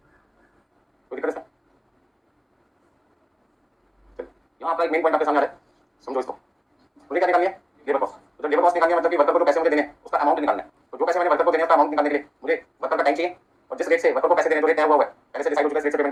कोई दिक्कत इसमें? यहाँ आपका एक मेन पॉइंट आपके सामने आ रहा है, समझो इसको। मुझे क्या निकालनी है? Labour cost. तो जब लेबर कॉस्ट निकालनी है मतलब कि वर्कर को जो पैसे मुझे देने हैं उसका अमाउंट निकालना है। तो जो पैसे मैंने वर्कर को देने हैं उसका अमाउंट निकालने के लिए मुझे वर्कर का टाइम चाहिए और जिस रेट से वर्कर को पैसे देने जो रेट तय हुआ है पहले से डिसाइड हो चुका है, रेट से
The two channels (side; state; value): both; identical; correlation 1.00